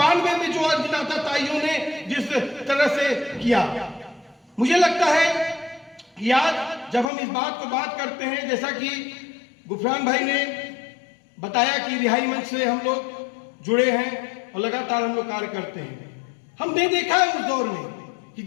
में जो अज्ञाता ताइयों ने जिस तरह से किया। मुझे लगता है कि आज जब हम इस बात को बात करते हैं, जैसा कि गुफरान भाई ने बताया कि रिहाई मंच से हम लोग जुड़े हैं और लगातार हम लोग कार्य करते हैं। हमने देखा है उस दौर में कि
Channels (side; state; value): right; drops out; at 7.1 s